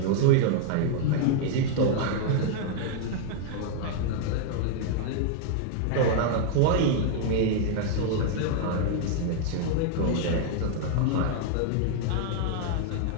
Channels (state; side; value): different; both; correlation 0.00